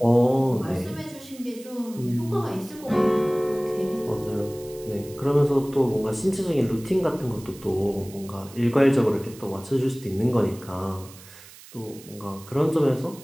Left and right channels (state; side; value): noise; right; hiss, 20 dB below the sound